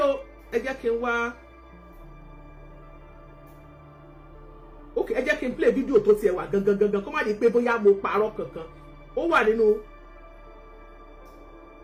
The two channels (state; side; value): identical; both; correlation 1.00